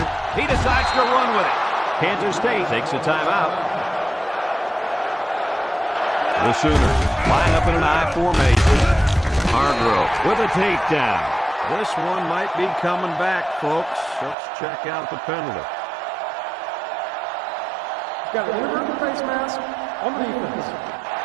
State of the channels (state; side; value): drops out; left; at 14.4 s